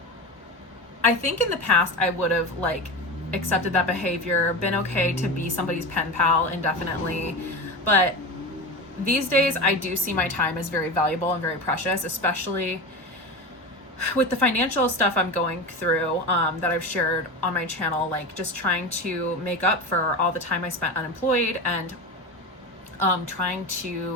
I think in the past I would have like accepted that behavior, been okay to be somebody's pen pal indefinitely, but these days I do see my time as very valuable and very precious, especially with the financial stuff I'm going through that I've shared on my channel, like just trying to make up for all the time I spent unemployed and trying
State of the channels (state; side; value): normal; both; correlation 0.25